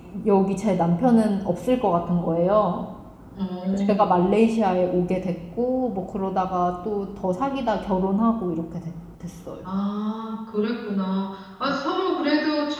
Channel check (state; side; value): identical; both; correlation 1.00